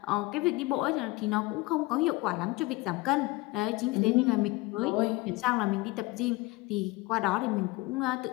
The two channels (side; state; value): right; quieter; 21.1 dB